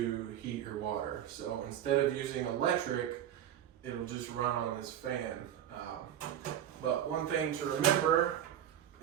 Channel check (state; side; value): quieter; left; 10.7 dB